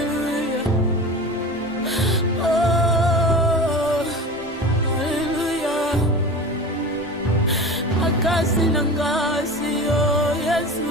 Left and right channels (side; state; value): both; normal; correlation 0.33